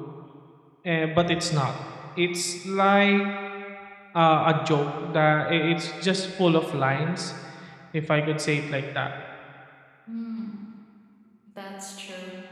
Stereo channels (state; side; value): identical; both; correlation 1.00